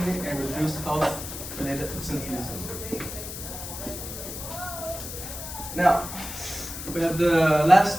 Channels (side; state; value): left; noise; hiss, 9 dB below the sound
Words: and reduced health-related absenteeism. Now, we have the